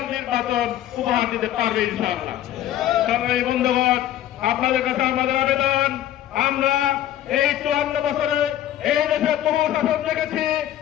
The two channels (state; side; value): quieter; right; 12.2 dB